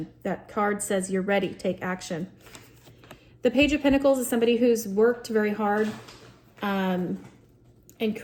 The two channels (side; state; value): both; identical; correlation 1.00